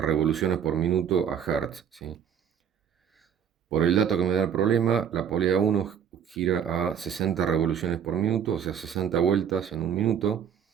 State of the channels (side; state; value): left; quieter; 8.3 dB